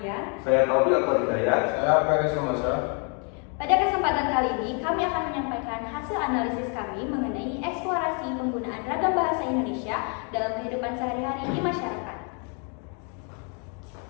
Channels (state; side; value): quieter; right; 38.8 dB